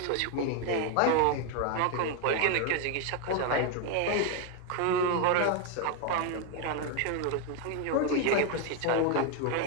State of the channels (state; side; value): different; both; correlation 0.01